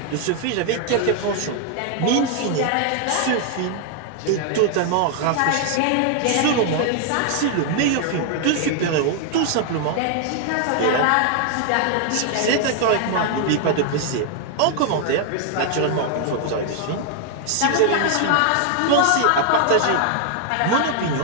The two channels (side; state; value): both; different; correlation 0.00